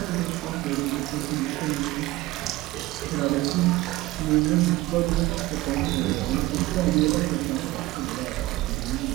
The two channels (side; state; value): left; quieter; 18.5 dB